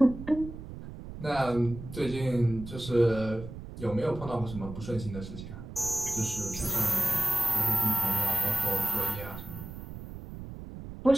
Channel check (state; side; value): noise; right; rumble, 11 dB below the sound